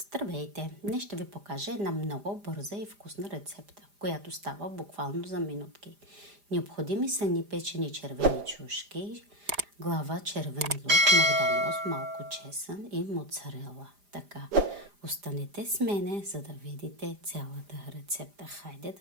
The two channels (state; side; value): late; left; 5.0 ms